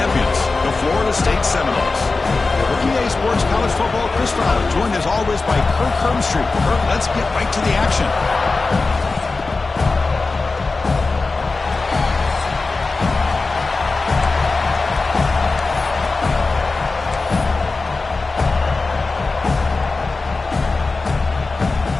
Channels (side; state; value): right; quieter; 3.8 dB